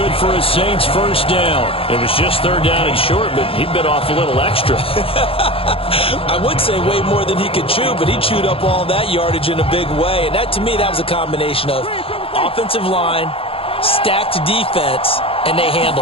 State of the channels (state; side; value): late; right; 0.27 ms